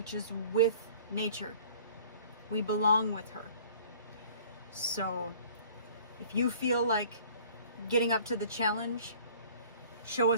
is with nature. We belong with her. So if you feel like getting up to the challenge, show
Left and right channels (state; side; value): inverted; both; correlation -0.50